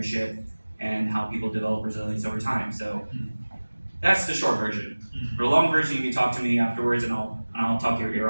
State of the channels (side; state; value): both; inverted; correlation -1.00